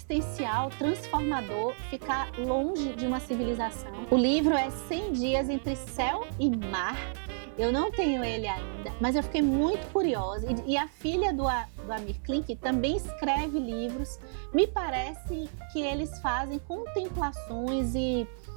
transformador, ficar longe de uma civilização. O livro é 100 Dias entre Céu e Mar. Eu não tenho ele ainda, mas eu fiquei muito curiosa. E a filha do Amir Klink também escreve livros. Me parece que eles fazem contemplações e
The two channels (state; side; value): silent; left; 58 dB below the other